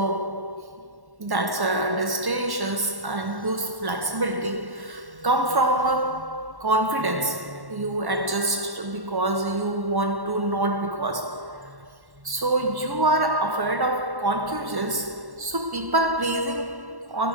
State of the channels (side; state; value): left; late; 1.1 ms